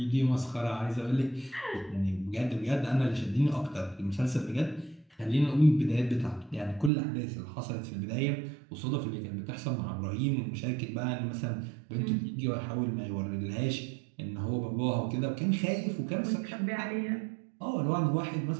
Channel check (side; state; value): left; drops out; at 6.9 s